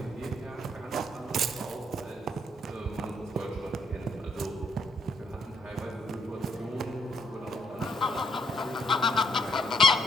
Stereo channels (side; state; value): both; normal; correlation 0.72